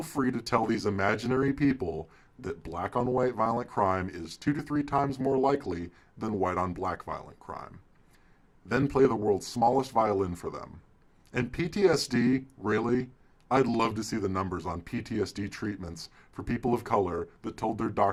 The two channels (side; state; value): both; identical; correlation 1.00